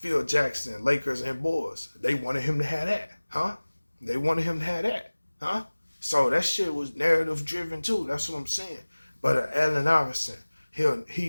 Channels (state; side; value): inverted; both; correlation -1.00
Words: Jackson, Lakers and Bulls, they wanted him to have that, huh? They wanted him to have that, huh? So that shit was narrative driven too. That's what I'm saying. But Allen Iverson, he